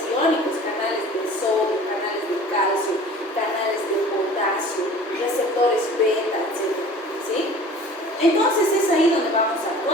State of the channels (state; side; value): normal; both; correlation 0.45